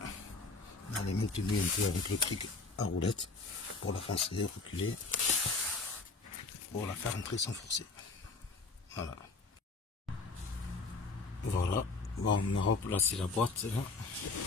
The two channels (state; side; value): quieter; right; 3.9 dB